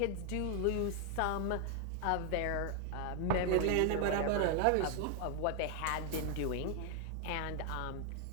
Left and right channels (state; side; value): different; both; correlation 0.00